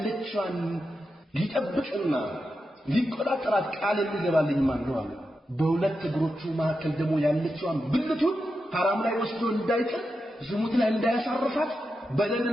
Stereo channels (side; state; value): both; normal; correlation 0.88